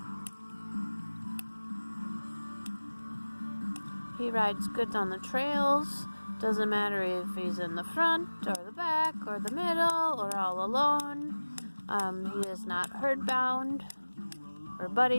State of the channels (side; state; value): both; inverted; correlation -1.00